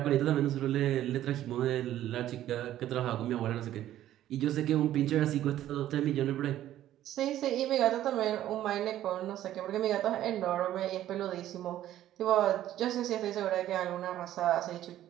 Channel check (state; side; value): quieter; left; 12.8 dB